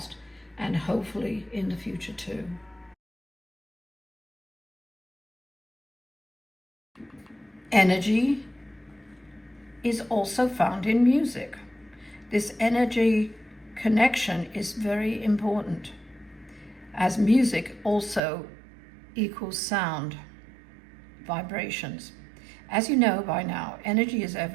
and hopefully in the future too. Energy is also found in music. This energy connection is very important, as music also equals sound, vibrations. As you know by now, energy is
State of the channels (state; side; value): drops out; left; at 18.2 s